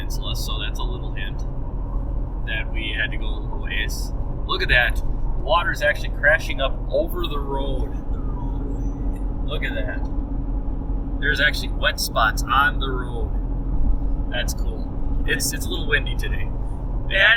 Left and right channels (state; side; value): identical; both; correlation 1.00